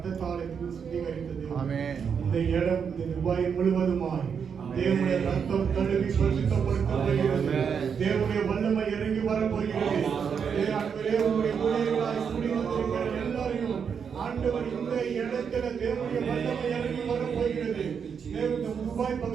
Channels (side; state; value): left; quieter; 6.8 dB